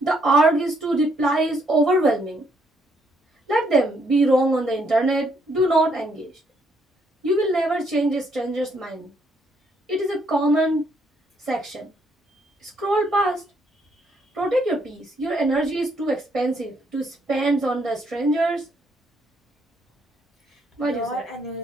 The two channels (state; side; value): normal; both; correlation 0.71